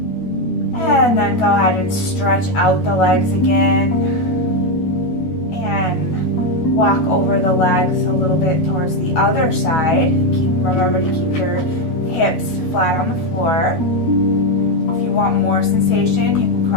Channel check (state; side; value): late; right; 13 ms